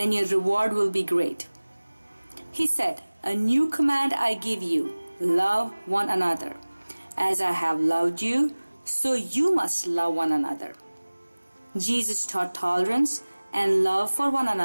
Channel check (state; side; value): inverted; both; correlation -1.00